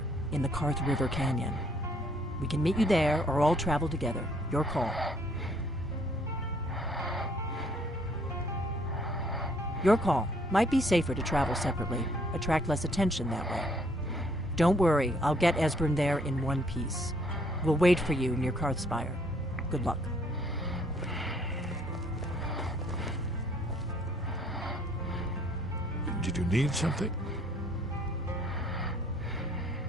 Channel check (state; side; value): normal; both; correlation 0.64